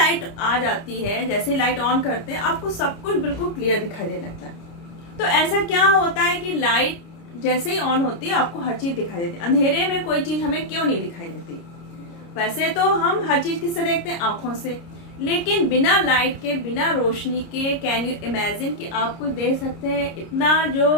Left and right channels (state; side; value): late; right; 29 ms